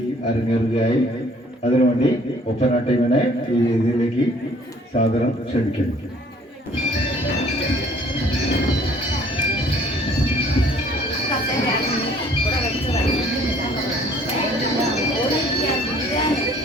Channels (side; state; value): both; normal; correlation 0.57